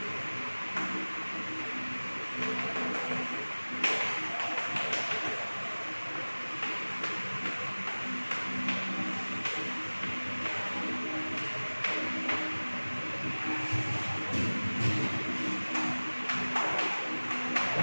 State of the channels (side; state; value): both; inverted; correlation -1.00